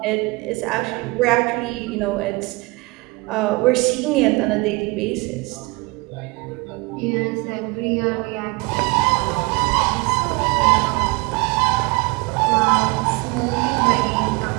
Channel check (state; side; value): quieter; left; 25.6 dB